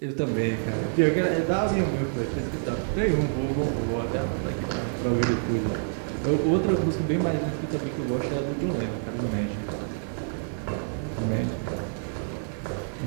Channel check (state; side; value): silent; left; 57 dB below the other